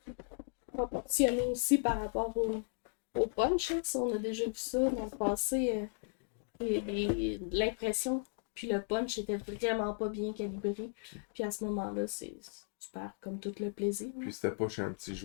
proportionnées aussi par rapport au punch. Hein. Ça, on a déjà vu ça dans le passé. L'impression puis le punch était vraiment pas bien calibré. Puis à ce moment-là, c'est super, comme tout le plaisir. Puis c'était pas chez un petit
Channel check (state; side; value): silent; right; digital silence